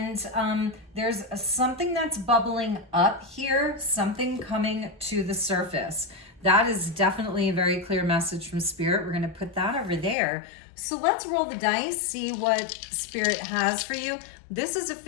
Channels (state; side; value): drops out; right; at 10.2 s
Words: there's something that's bubbling up here, something coming to the surface. That is definitely a very clear message from Spirit. We're going to put that over there. So let's roll the dice, see what Spirit has for you. This is a